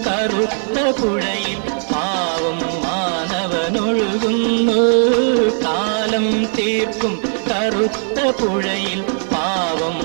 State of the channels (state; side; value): silent; left; 62 dB below the other